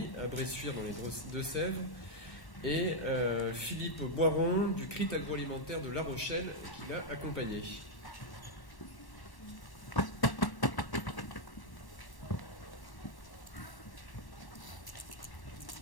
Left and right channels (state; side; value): late; right; 1.1 ms